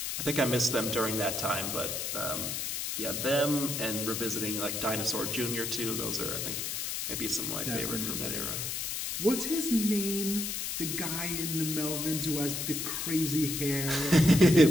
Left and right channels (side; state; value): left; noise; hiss, 3 dB below the sound